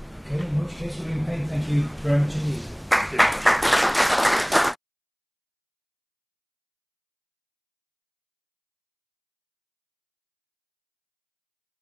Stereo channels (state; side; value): identical; both; correlation 1.00